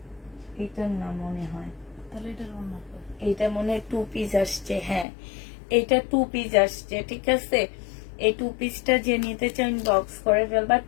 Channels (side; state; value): right; drops out; at 5.1 s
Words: এটার না মনে হয়, তাহলে এটার ওড়না এটা মনে হয় 2 পিস আসছে, হ্যাঁ এটা 2 পিস আসছে, ঠিক আছে। এই 2 পিসটা যে নিতে চান বক্স করে ফেলবা।